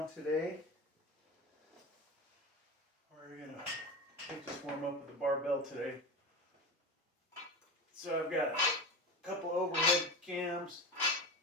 today. We're gonna just warm up with the barbell today. So I've got a couple overhead cams,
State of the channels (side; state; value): both; normal; correlation 0.27